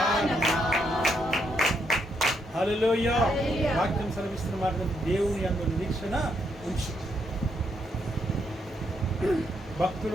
హల్లెలూయా. వాక్యం సెలవిస్తున్న మాట, దేవుని యందు నిరీక్షణ ఉంచు. భక్తులు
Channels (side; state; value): both; normal; correlation 0.77